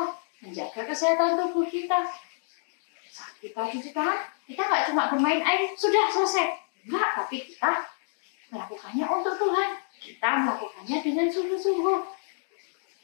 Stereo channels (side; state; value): right; silent; digital silence